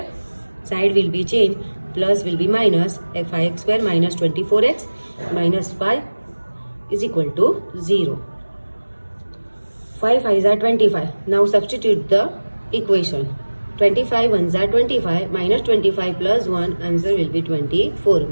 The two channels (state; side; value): inverted; both; correlation -1.00